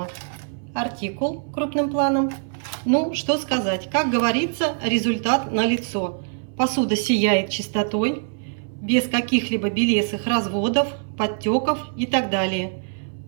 Артикул крупным планом. Ну, что сказать, как говорится, результат налицо. Посуда сияет чистотой, без каких-либо белесых разводов, подтеков и так далее.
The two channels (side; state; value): left; silent; 59 dB below the other